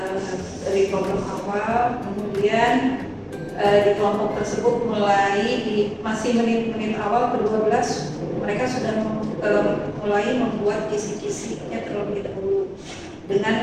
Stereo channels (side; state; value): both; identical; correlation 1.00